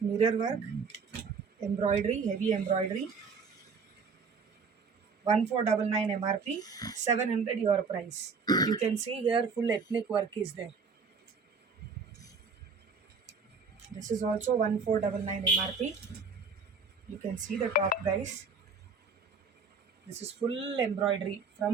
work. Embroidery, heavy embroidery. 1499 MRP. 700 your price. You can see here full ethnic work is there. This is also 1499 MRP. You can see the top, guys. This is full embroidery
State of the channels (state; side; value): quieter; left; 5.0 dB